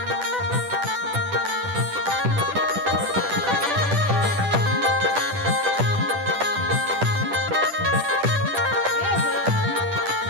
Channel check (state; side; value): late; left; 10 ms